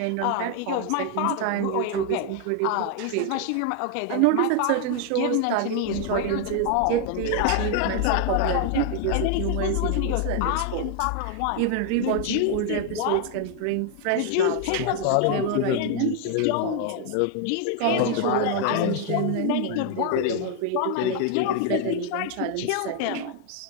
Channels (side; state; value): both; different; correlation 0.00